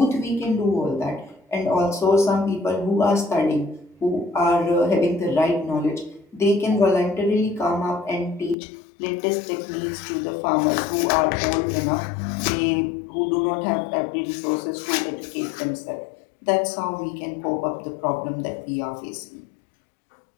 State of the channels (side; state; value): right; drops out; at 8.6 s